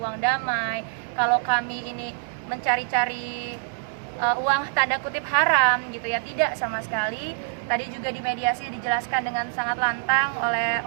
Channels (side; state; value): left; silent; digital silence